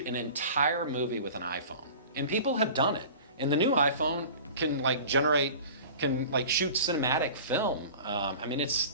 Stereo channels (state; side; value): inverted; both; correlation -0.39